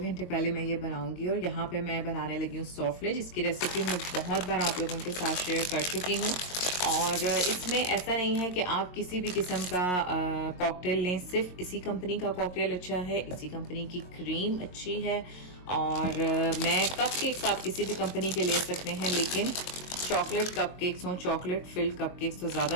पहले मैं ये बनाऊँगी और यहाँ पे मैं बनाने लगी हूँ सॉफ्टले, जिसकी रेसिपी मैं बहुत बार आप लोगों के साथ शेयर कर चुकी हूँ। और इसमें ऐसा नहीं है कि आप किसी भी किस्म का कॉकटेल लें, सिर्फ इसी कंपनी का कॉकटेल अच्छा है, इसी कंपनी की क्रीम अच्छी है और मैं कपकेक्स आप किसी भी कंपनी के ले सकते हैं, लेकिन चॉकलेट कपकेक्स हों, चॉकलेट फिल्ड कपकेक्स तो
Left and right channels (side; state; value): right; late; 22 ms